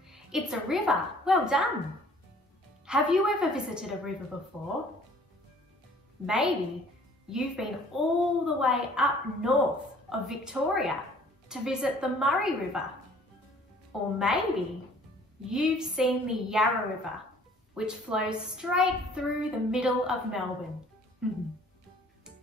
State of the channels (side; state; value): both; normal; correlation 0.54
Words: It's a river. Well done. Have you ever visited a river before? Maybe you've been all the way up north of Victoria to visit the Murray River. Or maybe you've seen the Yarra River, which flows straight through the middle of Melbourne.